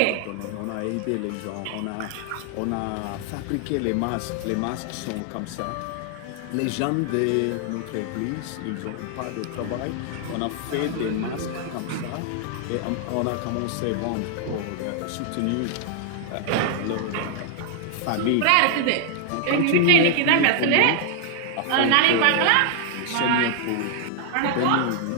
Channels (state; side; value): different; both; correlation 0.00